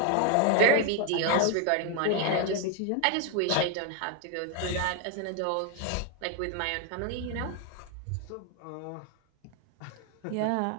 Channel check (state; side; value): different; both; correlation 0.01